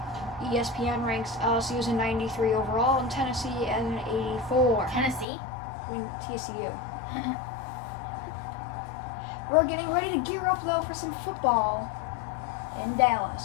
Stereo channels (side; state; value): right; drops out; at 5.2 s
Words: ESPN ranks LSU as a 93 overall and Tennessee as an 84. Tennessee? I mean, TCU. We're getting ready to gear up, though, for some football in Dallas.